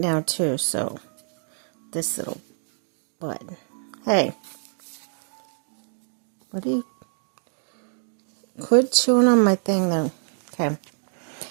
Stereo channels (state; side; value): silent; left; digital silence